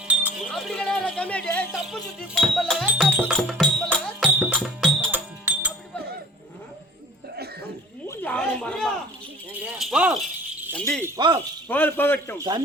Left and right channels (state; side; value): normal; both; correlation 0.46